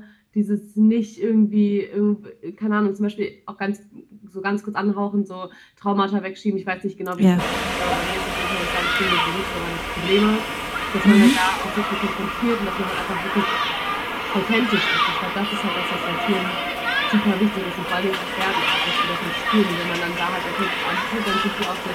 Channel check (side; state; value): both; identical; correlation 1.00